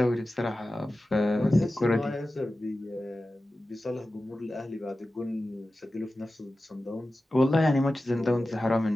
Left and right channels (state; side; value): normal; both; correlation 0.94